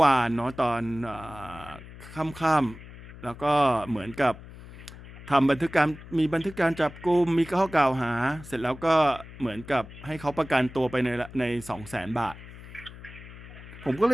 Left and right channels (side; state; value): left; noise; hum, 16 dB below the sound